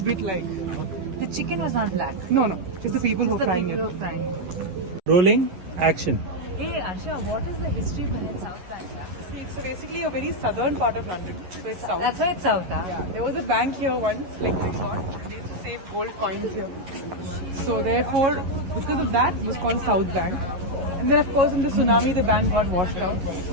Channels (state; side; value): late; left; 11 ms